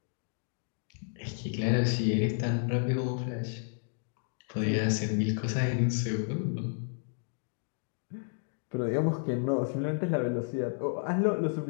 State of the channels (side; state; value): right; silent; digital silence